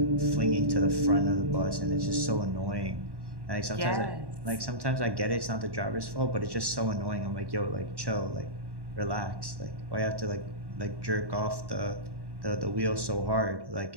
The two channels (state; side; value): late; left; 1.1 ms